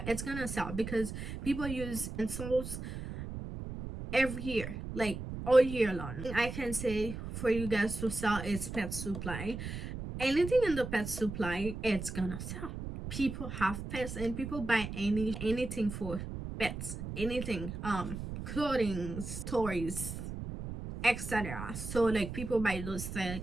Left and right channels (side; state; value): right; noise; rumble, 7 dB below the sound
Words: it's gonna sell because people use utensils every year, like all year long. I can say for you guys to sell is pet supply. Anything in the pet supply, it's gonna sell. People have pets and people buy anything for pets, anything, clothing, toys, etc. So like people buy those things